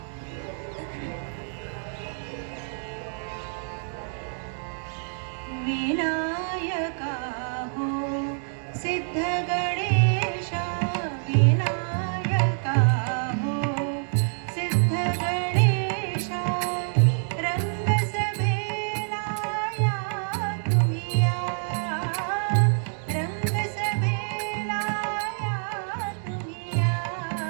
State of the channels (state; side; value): silent; left; 60 dB below the other